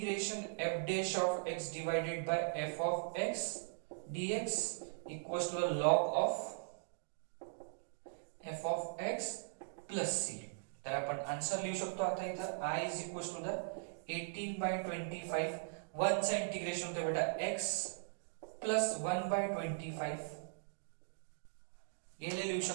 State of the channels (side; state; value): left; silent; digital silence